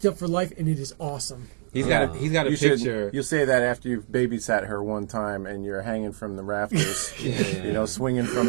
up for life, and it is awesome. He's got a picture. You'll say that after you've babysat her one time and you're hanging from the rafters, you know, swinging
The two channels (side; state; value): left; silent; digital silence